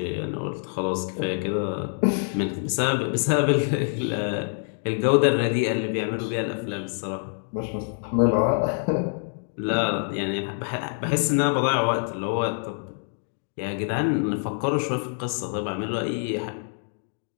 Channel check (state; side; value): silent; right; 61 dB below the other